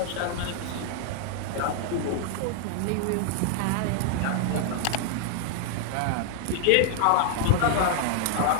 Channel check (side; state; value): both; different; correlation 0.00